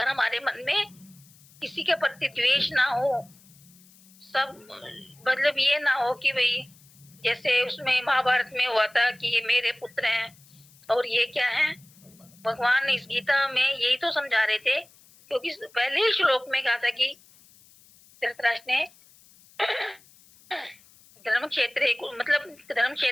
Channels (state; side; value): noise; left; hiss, 27 dB below the sound